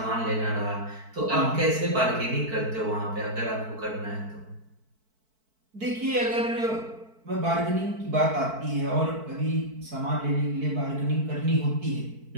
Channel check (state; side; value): late; left; 4.5 ms